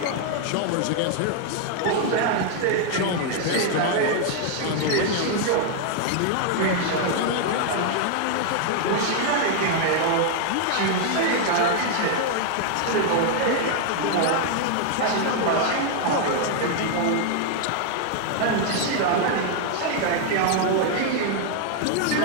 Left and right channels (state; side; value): different; both; correlation 0.00